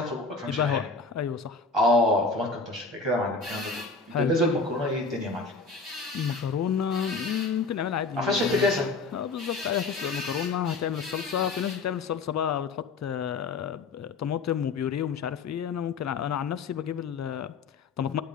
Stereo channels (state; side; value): quieter; right; 4.1 dB